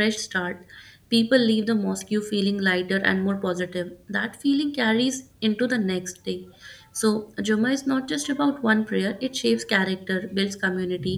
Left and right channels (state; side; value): identical; both; correlation 1.00